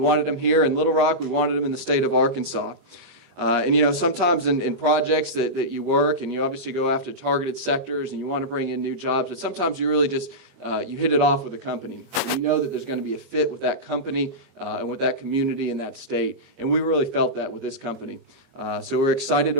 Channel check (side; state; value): left; late; 22 ms